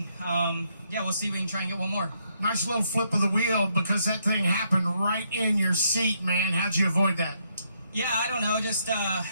we'll see if we can try and get one more. Nice little flip of the wheel because that thing happened right in your seat, man. How'd you avoid that? Yeah, I don't know. Just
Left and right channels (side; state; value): both; inverted; correlation -0.74